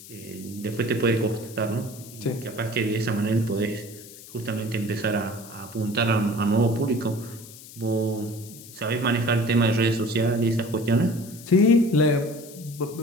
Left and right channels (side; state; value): left; noise; hiss, 17 dB below the sound